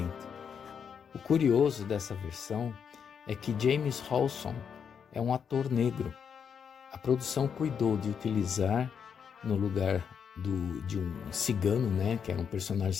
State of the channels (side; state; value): right; quieter; 7.2 dB